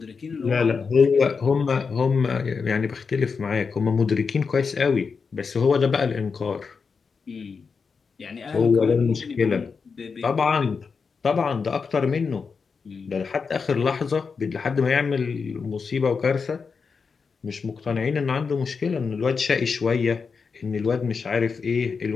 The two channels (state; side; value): quieter; right; 5.3 dB